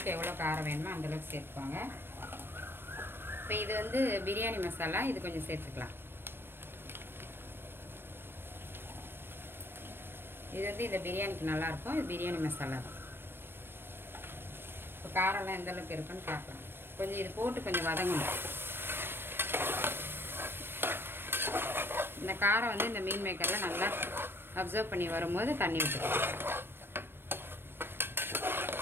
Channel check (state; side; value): late; left; 0.10 ms